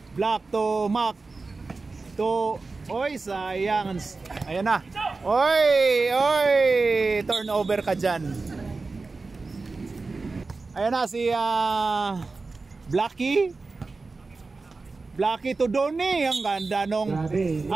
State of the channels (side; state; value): left; quieter; 3.9 dB